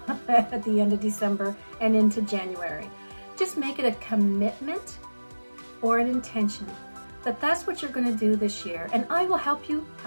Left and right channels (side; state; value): both; inverted; correlation -1.00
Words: at the end of December and into January. Just make it a commitment or an intention that that's what you're going to do this year. And I will help you